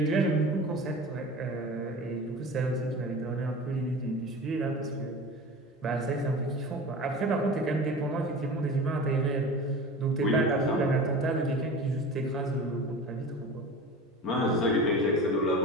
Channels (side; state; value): both; normal; correlation 0.34